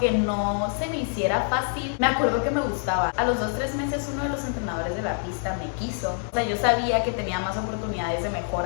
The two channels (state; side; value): silent; right; 58 dB below the other